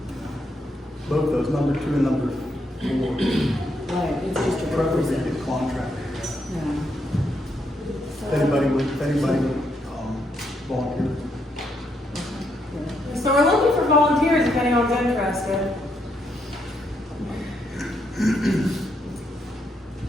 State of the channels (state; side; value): normal; both; correlation 0.77